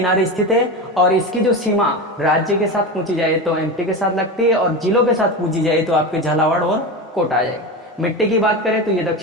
स्थित है, और इसकी जो सीमा राज्य के साथ पूछी जाए तो MP के साथ लगती है, और जिलों के साथ पूछी जाए तो आपके झालावाड़ और कोटा आ जाएगा। मिट्टी की बात करें तो ये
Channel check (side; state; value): both; normal; correlation 0.22